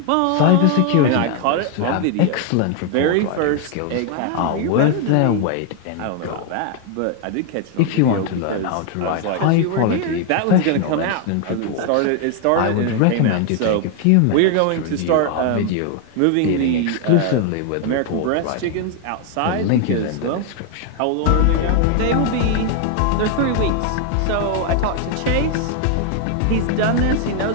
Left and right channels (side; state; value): both; different; correlation 0.00